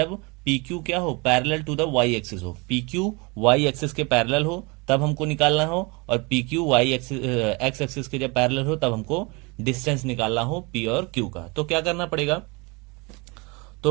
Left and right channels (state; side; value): quieter; left; 27.9 dB